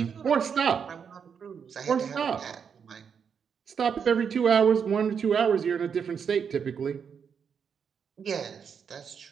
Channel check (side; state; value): left; quieter; 6.9 dB